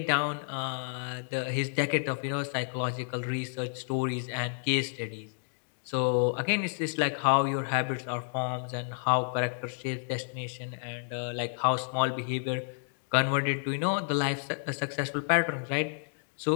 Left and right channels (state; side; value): silent; right; digital silence